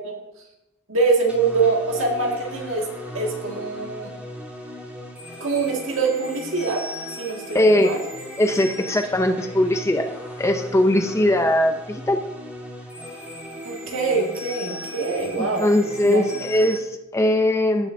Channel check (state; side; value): normal; both; correlation 0.48